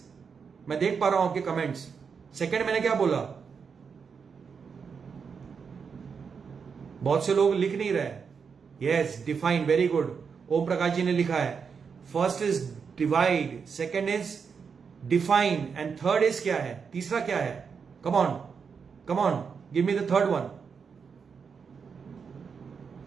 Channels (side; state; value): left; quieter; 6.0 dB